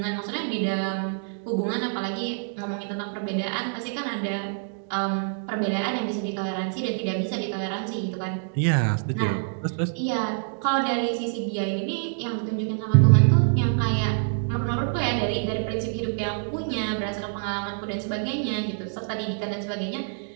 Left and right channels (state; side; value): silent; left; digital silence